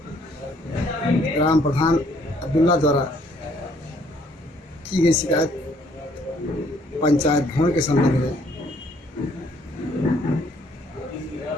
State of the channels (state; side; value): normal; both; correlation 0.64